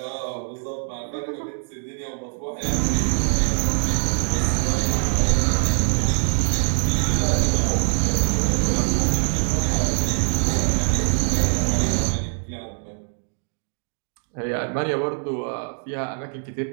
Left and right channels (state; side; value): silent; left; 58 dB below the other